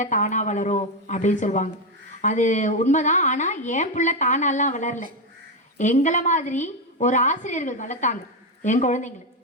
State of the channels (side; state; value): both; normal; correlation 0.08